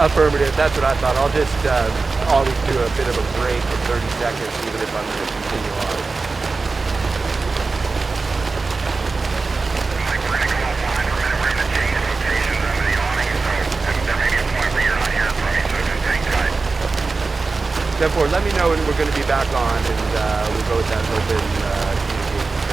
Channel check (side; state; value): left; quieter; 4.0 dB